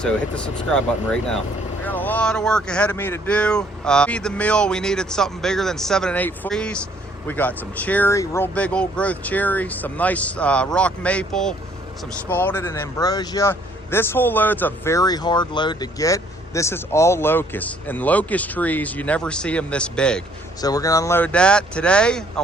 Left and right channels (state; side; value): normal; both; correlation 0.63